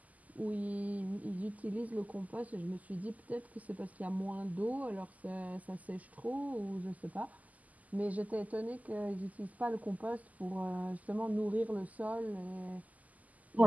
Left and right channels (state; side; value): late; left; 0.077 ms